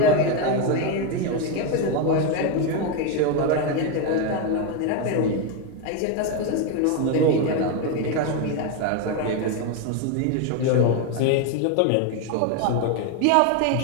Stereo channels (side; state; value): both; different; correlation 0.02